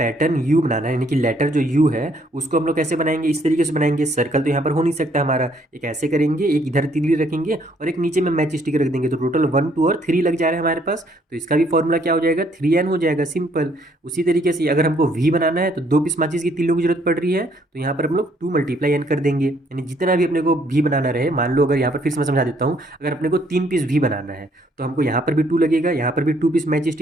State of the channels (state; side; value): normal; both; correlation 0.66